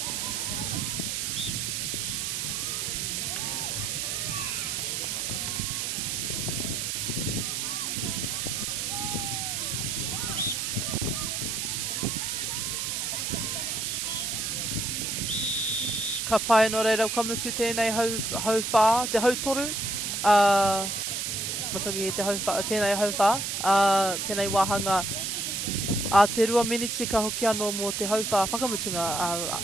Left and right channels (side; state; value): right; noise; hiss, 1 dB below the sound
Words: Ka pai no reira kamutu tēnei hau whā, te hau toru. Matoki te hau whā, tēnei hau whā. Tēnei wāhanga. Te rua miniti ka hoki anō mō te hau whā whakamutunga.